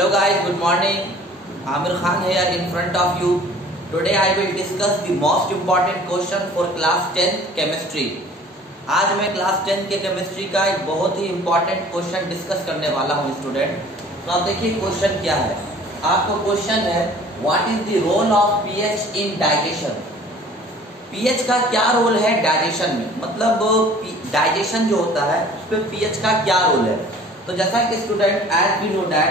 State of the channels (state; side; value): normal; both; correlation 0.49